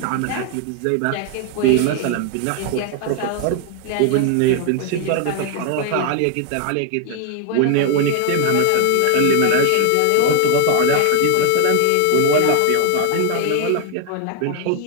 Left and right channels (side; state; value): both; different; correlation 0.00